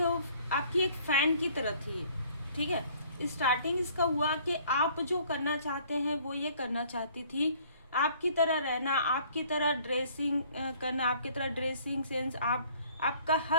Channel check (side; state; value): both; inverted; correlation -0.57